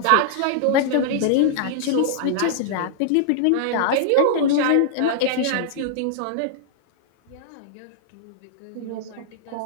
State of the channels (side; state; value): both; different; correlation -0.01